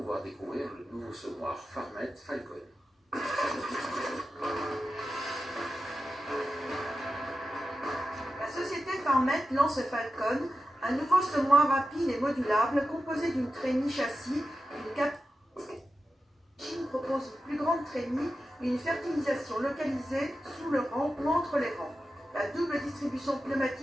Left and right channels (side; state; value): both; normal; correlation 0.91